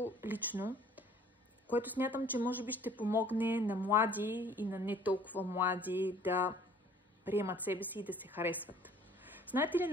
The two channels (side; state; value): both; normal; correlation 0.53